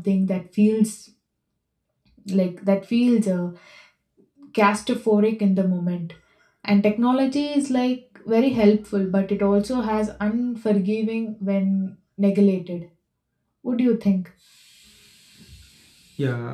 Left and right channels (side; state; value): both; identical; correlation 1.00